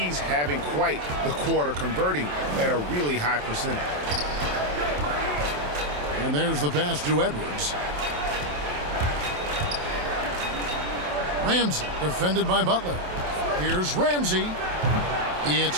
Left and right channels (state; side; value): late; left; 27 ms